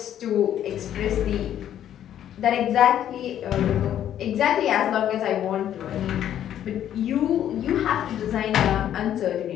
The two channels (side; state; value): right; quieter; 10.7 dB